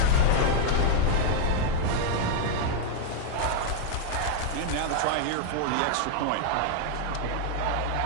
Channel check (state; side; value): different; both; correlation 0.00